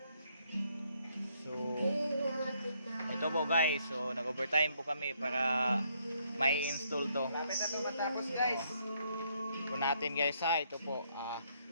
So, ito po guys, so nag-overtime po kami para may install to. Lapit na ito matapos guys. Ito natin guys ha, ito po.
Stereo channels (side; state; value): both; inverted; correlation -0.71